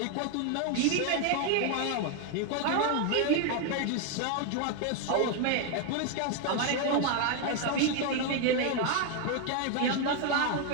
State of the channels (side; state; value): both; different; correlation 0.01